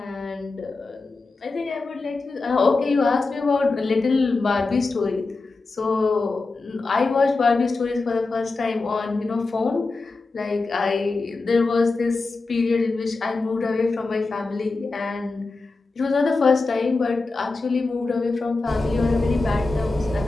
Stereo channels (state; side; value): quieter; right; 3.7 dB